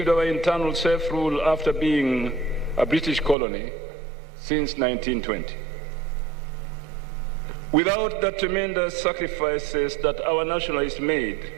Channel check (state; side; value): drops out; left; at 3.4 s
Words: our internal self-rule after being a British colony since 1920. Without the tremendous sacrifices that our nationalists made